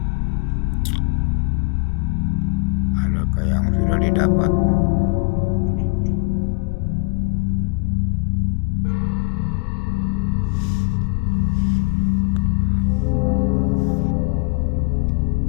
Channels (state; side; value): quieter; right; 31.0 dB